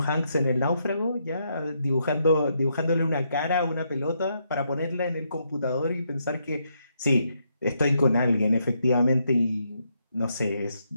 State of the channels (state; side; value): inverted; both; correlation -0.78